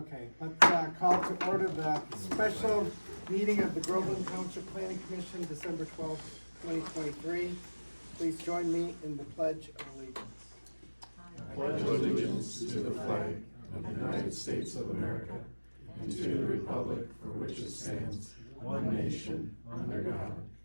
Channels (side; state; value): both; inverted; correlation -1.00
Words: let's call to order the special meeting of the Groveland Township Planning Commission, December 12th, 2023. Please join me in the Pledge of Allegiance. Pledge allegiance to the flag of the United States of America and to the republic for which it stands, one nation, under God,